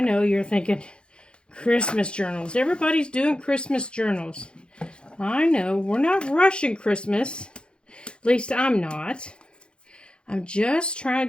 you're thinking, Christmas journals. Everybody's doing Christmas journals. I know, we're not rushing Christmas. At least I'm not. I'm just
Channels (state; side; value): late; right; 0.054 ms